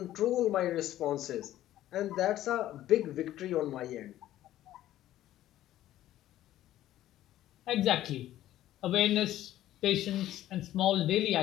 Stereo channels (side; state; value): right; quieter; 13.6 dB